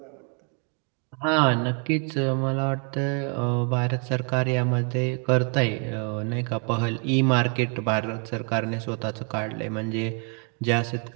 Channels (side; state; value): left; quieter; 38.2 dB